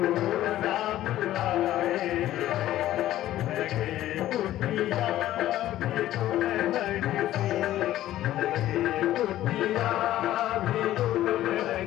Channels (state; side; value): quieter; right; 13.8 dB